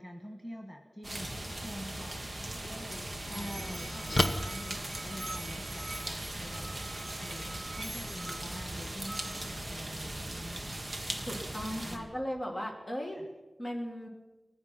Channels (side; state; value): both; normal; correlation 0.96